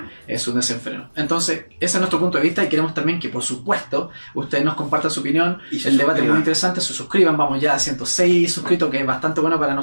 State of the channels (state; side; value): inverted; both; correlation -1.00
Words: Es un desenfreno. Entonces, ese es nuestro punto de vista, y queremos también que, por supuesto, ustedes nos compartan su opinión. El debate es muy interesante, se suscriban, vamos ya a 106 suscritos, que es bastante bueno para